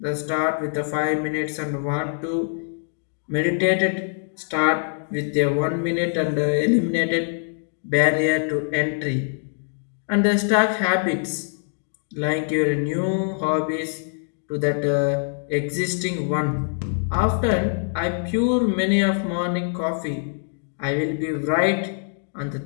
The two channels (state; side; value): silent; right; digital silence